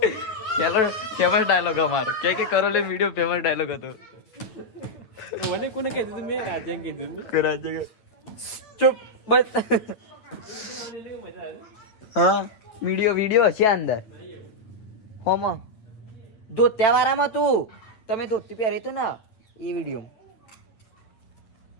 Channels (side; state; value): right; late; 9.2 ms